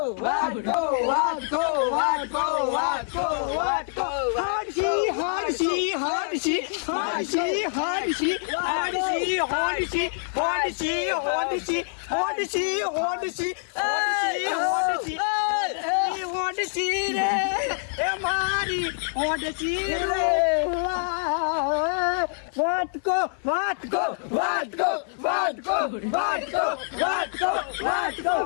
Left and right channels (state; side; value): silent; right; 61 dB below the other